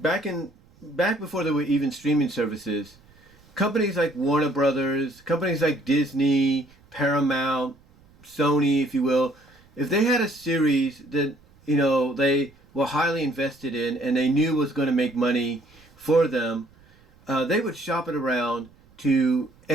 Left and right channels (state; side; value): noise; right; rumble, 29 dB below the sound